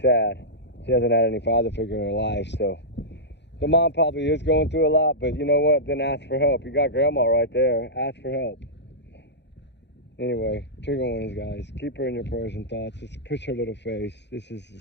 sad. She hasn't had any father figure in her life, so the mom probably is going through a lot, but you know what? Then ask for help. You got grandma right there. Ask for help. Anyway, trigger warnings, guys. Keep her in your prayers and thoughts. Just push her little face. This is a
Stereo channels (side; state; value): right; late; 0.50 ms